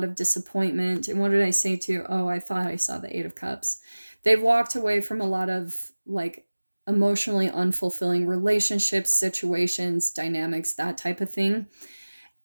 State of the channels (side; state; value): both; inverted; correlation -1.00